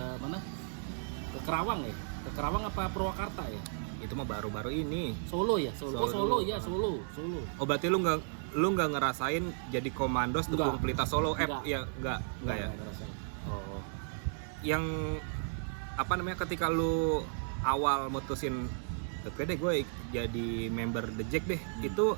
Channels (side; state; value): left; silent; digital silence